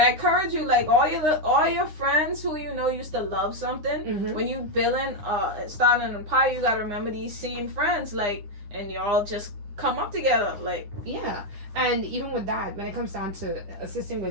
I encourage you, like, all your friends who used to love something. When you starting an empire, you gotta remember these same friends, like, and y'all just come up together, like. Yeah. And even with that, when it comes down to assisting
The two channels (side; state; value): left; late; 9.7 ms